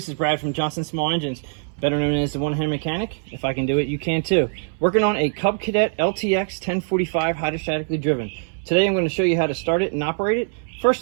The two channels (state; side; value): silent; left; 64 dB below the other